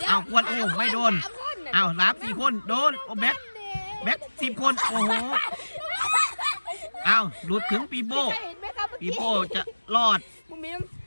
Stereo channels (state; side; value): inverted; both; correlation -1.00